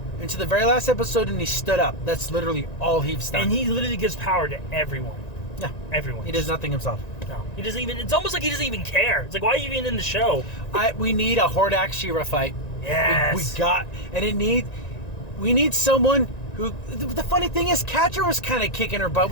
until the very last episode and he stood up. That's literally all he's done. And he literally gives power to everyone. Yeah. Everyone. He does nothing himself. No. He doesn't even. It's almost like he doesn't even care. It's like, why are you even in the show? We need a Hordak She-Ra fight. Yes. We need someone who. The funny thing is, Catra was kind of kicking her butt,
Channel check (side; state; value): right; late; 1.9 ms